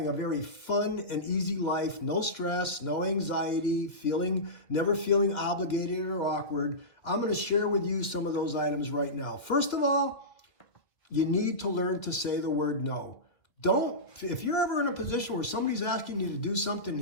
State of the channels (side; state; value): right; late; 2.1 ms